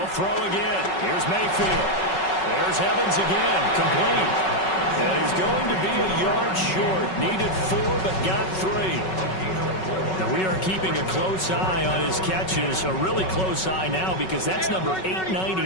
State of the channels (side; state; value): right; late; 5.3 ms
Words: throw again. Here's Mayfield. There's Evans again. Complete. And he's going to be a yard short. Needed 4, but got 3. Now we are keeping a close eye on his catches, a really close eye now because that's number